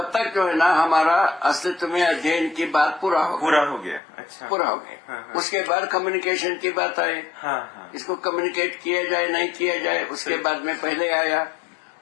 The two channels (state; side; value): drops out; right; at 4.0 s